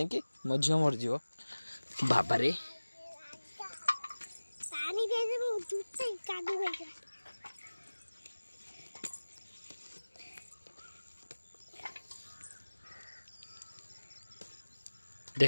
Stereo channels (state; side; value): inverted; both; correlation -1.00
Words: मो झील मरज बाबा रे